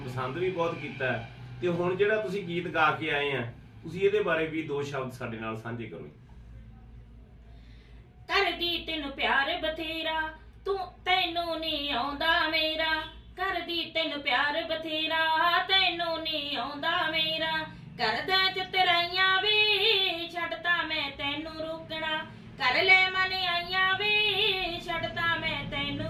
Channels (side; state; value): both; identical; correlation 1.00